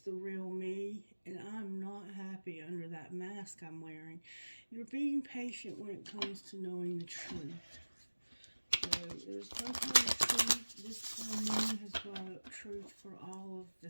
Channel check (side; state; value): both; inverted; correlation -1.00